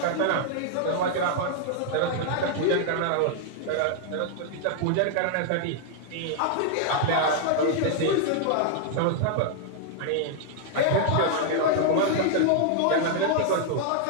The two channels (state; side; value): different; both; correlation -0.01